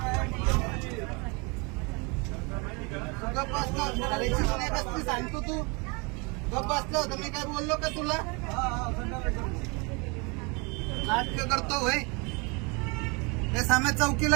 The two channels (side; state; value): left; quieter; 30.2 dB